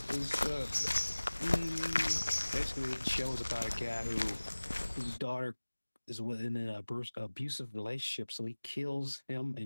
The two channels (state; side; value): inverted; both; correlation -1.00